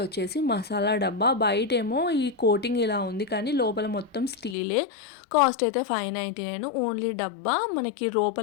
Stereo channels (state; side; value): drops out; right; at 4.5 s